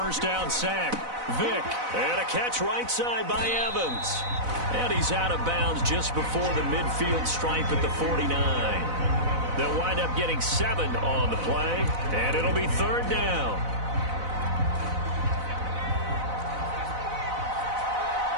down sack. Vick, and a catch right side by Evans. And he's out of bounds just before the midfield stripe at the 49. They'll wind up getting 7 on the play, and it'll be 3rd down.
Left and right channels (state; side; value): late; left; 4.0 ms